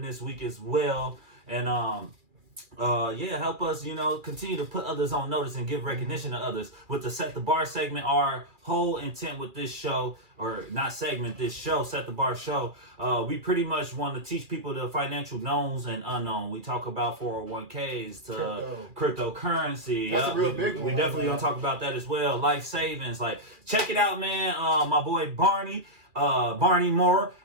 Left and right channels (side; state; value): left; late; 2.4 ms